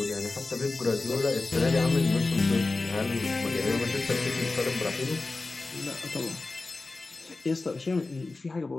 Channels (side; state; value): right; quieter; 3.4 dB